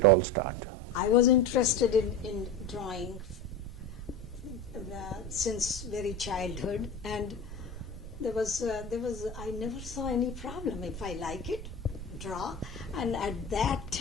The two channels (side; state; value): right; noise; rumble, 9 dB below the sound